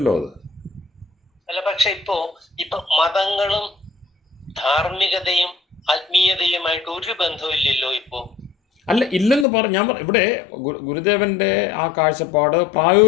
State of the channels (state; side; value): drops out; right; at 9.5 s